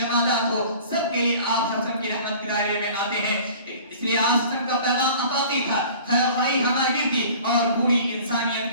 ہو، سب کے لیے آپ صلی اللہ علیہ وسلم کی رحمت کے دائرے میں آتے ہیں۔ اس لیے آپ صلی اللہ علیہ وسلم کا پیغام عطائی تھا، خیر خواہی ہماری تھی، اور پوری انسانیت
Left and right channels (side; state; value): both; inverted; correlation -0.46